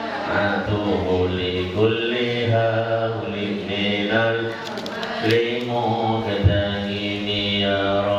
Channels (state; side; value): identical; both; correlation 1.00